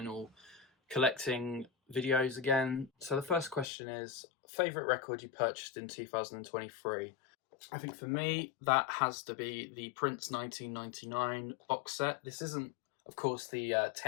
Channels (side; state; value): right; drops out; at 3.7 s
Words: collecting videos again. So the first question is, favourite record you purchased in 2023? I think for me, that has to be the Prince 1999 box set. This isn't, of course, the